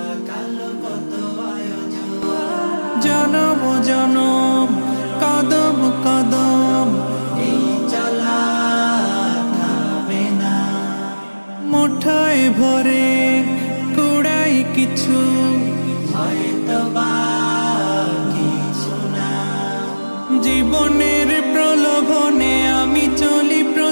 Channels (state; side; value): inverted; both; correlation -1.00